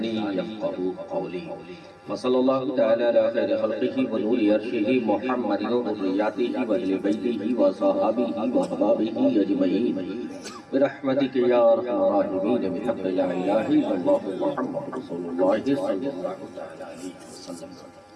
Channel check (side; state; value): both; identical; correlation 1.00